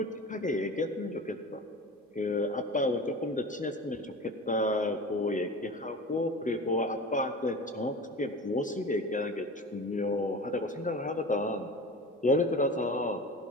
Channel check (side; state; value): both; normal; correlation 0.34